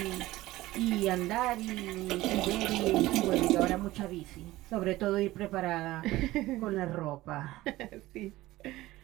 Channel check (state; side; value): quieter; left; 17.4 dB